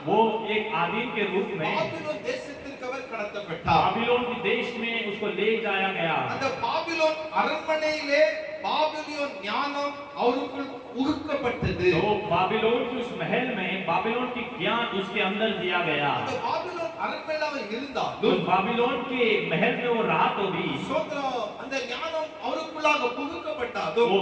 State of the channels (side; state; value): both; identical; correlation 1.00